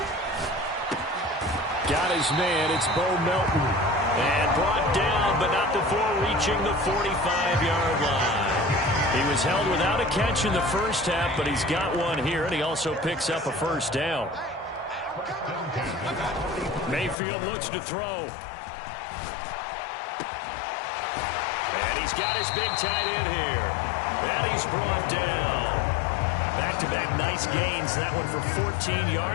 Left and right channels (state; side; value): drops out; right; at 17.2 s